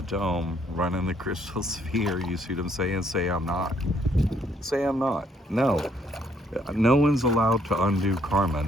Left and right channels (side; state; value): both; normal; correlation 0.68